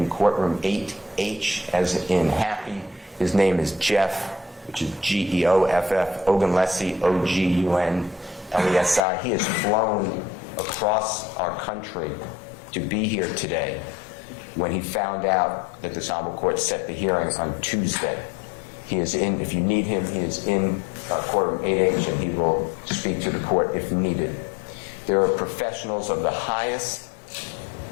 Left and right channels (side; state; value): right; drops out; at 9.0 s